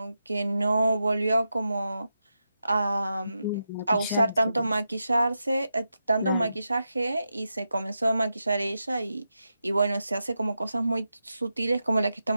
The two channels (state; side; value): inverted; both; correlation -0.88